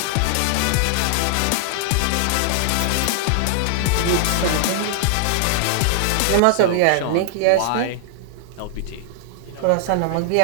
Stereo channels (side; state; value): both; different; correlation -0.01